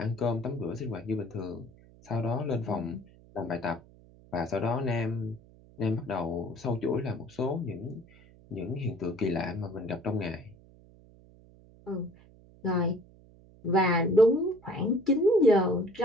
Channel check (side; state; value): right; noise; hum, 25 dB below the sound